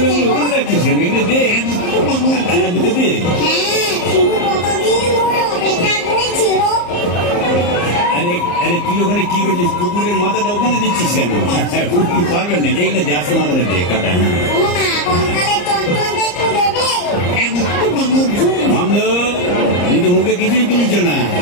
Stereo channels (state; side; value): late; right; 34 ms